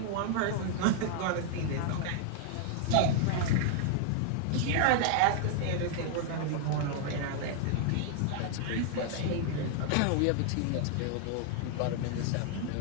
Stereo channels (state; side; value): different; both; correlation 0.00